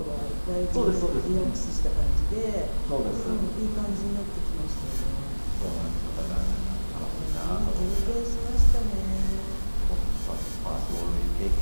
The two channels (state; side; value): inverted; both; correlation -1.00